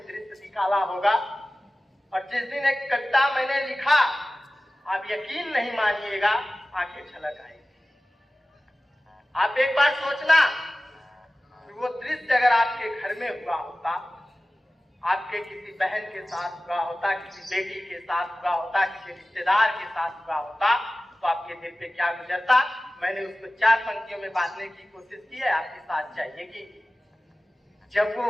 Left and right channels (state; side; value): normal; both; correlation 0.96